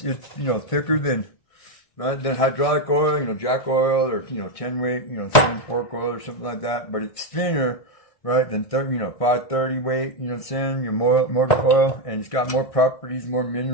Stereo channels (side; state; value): right; late; 1.7 ms